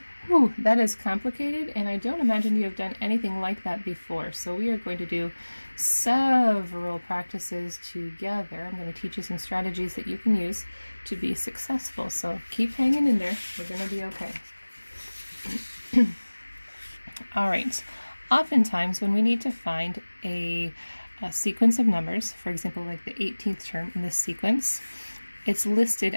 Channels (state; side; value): inverted; both; correlation -1.00